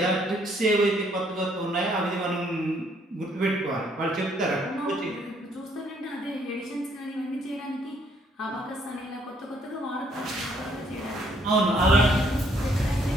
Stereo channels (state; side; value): normal; both; correlation 0.67